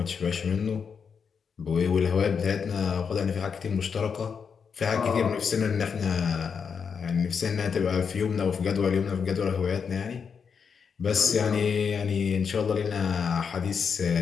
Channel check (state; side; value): quieter; right; 6.3 dB